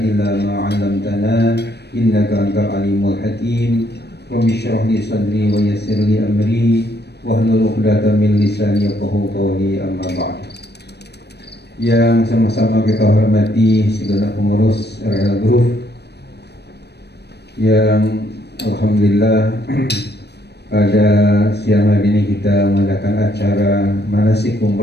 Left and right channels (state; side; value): late; right; 0.48 ms